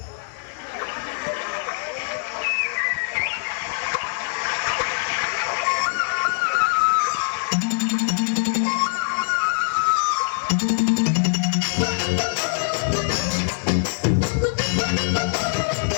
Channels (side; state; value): right; silent; 63 dB below the other